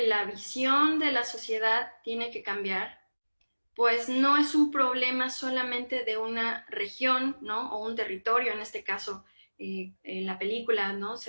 la visión de la sociedad tiene que cambiar, pues no es un problema solamente de una región, ¿no? O un territorio, en este caso, en la película, ¿no?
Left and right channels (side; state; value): both; inverted; correlation -1.00